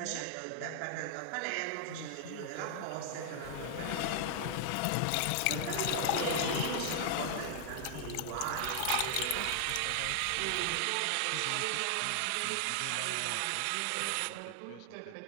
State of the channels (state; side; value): different; both; correlation 0.00